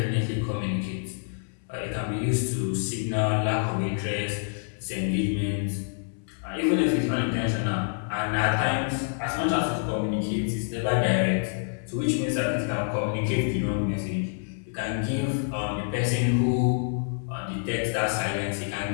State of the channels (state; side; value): silent; right; 60 dB below the other